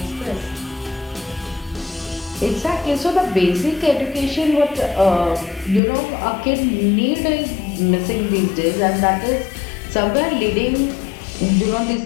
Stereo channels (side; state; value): right; drops out; at 5.8 s